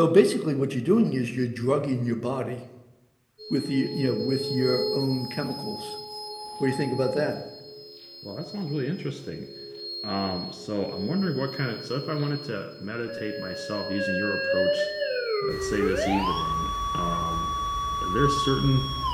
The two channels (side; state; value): both; identical; correlation 1.00